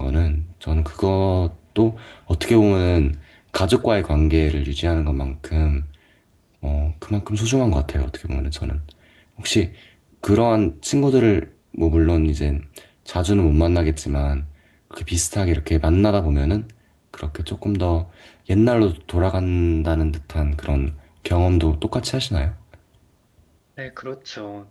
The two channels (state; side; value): identical; both; correlation 1.00